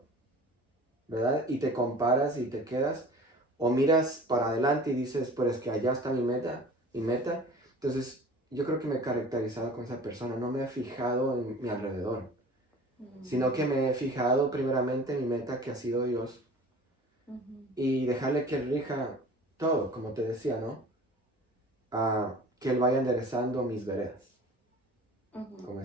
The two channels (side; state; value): both; normal; correlation 0.43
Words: ¿verdad? Y te comparas y te quedas, o miras para adelante y dices, pues es que allá está mi meta. Entonces, yo creo que me he caracterizado con esa persona, no me he fijado en mi alrededor, sino que me he fijado primeramente en mi meta, que ha sido Dios, y dejarle que Él rija todo, como te decía, ¿no? Que Él vaya enderezando mis veredas. Como